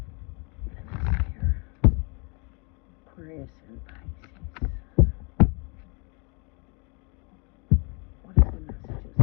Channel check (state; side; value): quieter; right; 32.4 dB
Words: Aquarius and Pisces? What are the messages